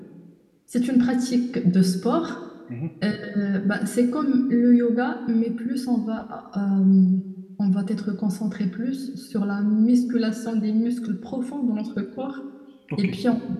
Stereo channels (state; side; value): identical; both; correlation 1.00